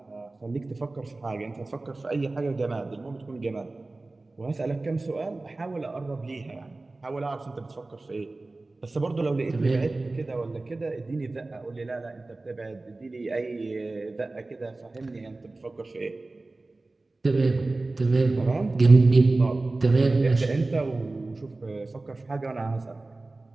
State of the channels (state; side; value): quieter; left; 3.2 dB